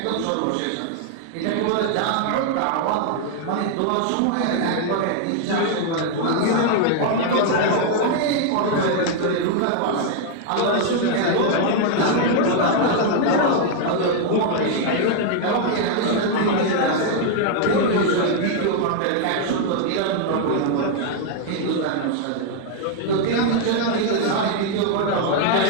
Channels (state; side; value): different; both; correlation 0.00